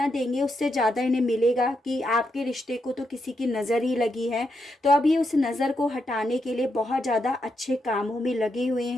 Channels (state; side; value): normal; both; correlation 0.82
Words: देंगे उससे ज़्यादा इन्हें मिलेगा, कि आपके रिश्ते को तो किसी की नज़र ही लगी है। तो अब ये उस नज़र को हटाने के लिए बहुत ज़्यादा अच्छे कामों में लगे हुए